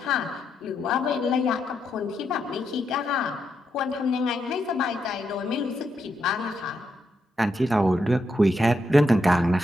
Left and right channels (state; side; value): normal; both; correlation 0.82